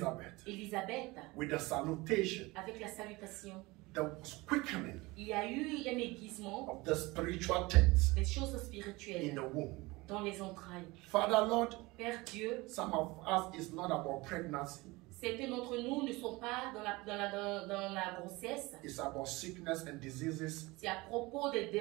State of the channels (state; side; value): quieter; left; 22.5 dB